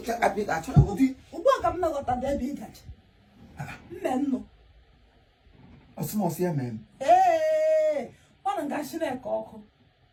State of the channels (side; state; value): both; identical; correlation 1.00